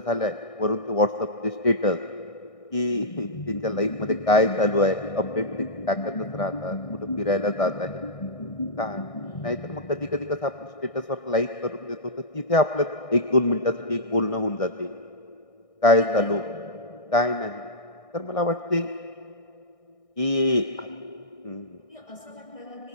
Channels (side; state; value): right; late; 1.6 ms